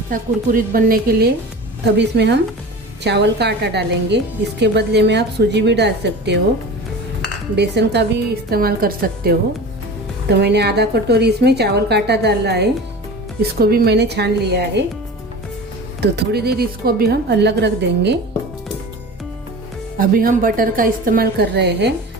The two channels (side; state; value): both; normal; correlation 0.35